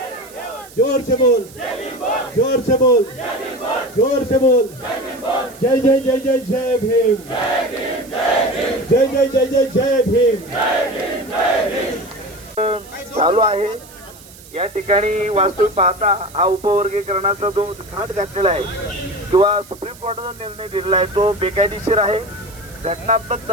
जोर से बोल, जोर से बोल, जोर से बोल। जय जय जय जय जय भीम, जय जय जय जय जय भीम। चालू आहे। या ठिकाणी वास्तविक पाहता हा उपवर्गीकरणाचा जो घाट घातलेला आहे किंवा सुप्रीम कोर्टाचा निर्णय दिलेला आहे तो बेकायदेशीर आहे, घटनात्मक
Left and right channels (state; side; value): noise; right; hiss, 21 dB below the sound